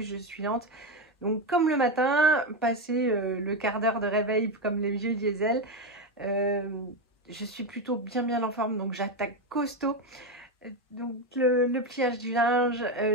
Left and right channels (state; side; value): normal; both; correlation 0.11